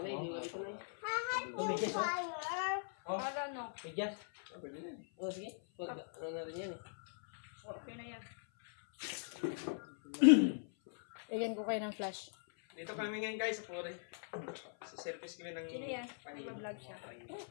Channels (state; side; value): silent; right; 51 dB below the other